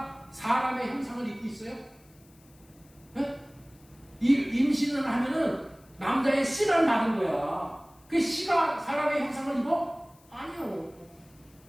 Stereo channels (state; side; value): noise; left; hiss, 29 dB below the sound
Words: 사람의 형상을 입고 있어요? 예? 이 임신을 하면은 남자의 씨를 받은 거야. 그 씨가 사람의 형상을 입어? 아니요.